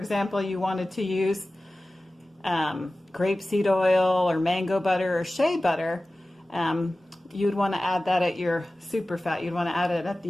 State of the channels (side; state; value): both; normal; correlation 0.96